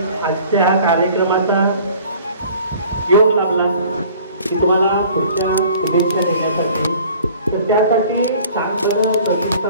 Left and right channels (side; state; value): both; inverted; correlation -0.49